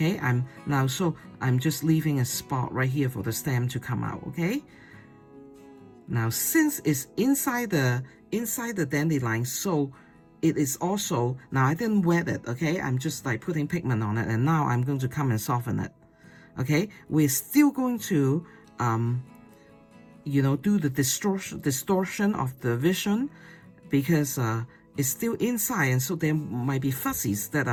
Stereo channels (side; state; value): both; identical; correlation 1.00